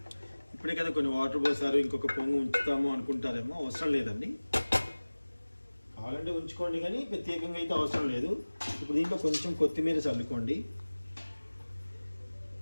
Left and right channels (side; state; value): both; inverted; correlation -1.00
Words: ఇప్పుడే కదా కొన్ని వాటర్ పోసారు, ఇంకొక పొంగు ఉంచుతాము అనుకుంటారేమో, అవసరం లేదండి. కావాలంటే ఉంచుకోండి, కానీ ప్రత్యేకంగా అయితే అవసరం లేదు. ఇప్పుడు దీంట్లో కొంచెం కొత్తిమీర చల్లుకోండి.